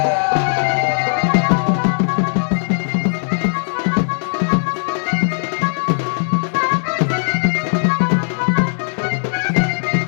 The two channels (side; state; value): right; silent; 67 dB below the other